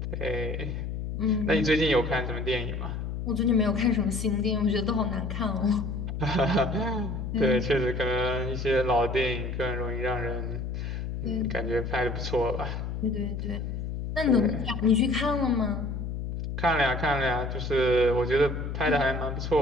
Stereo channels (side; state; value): left; noise; hum, 4 dB below the sound